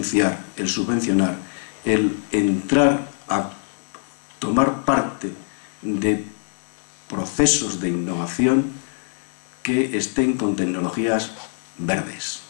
el subvencionar, el entrar a tomar parte de procesos de innovación que estén con tecnologías verdes,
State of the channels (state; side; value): silent; right; digital silence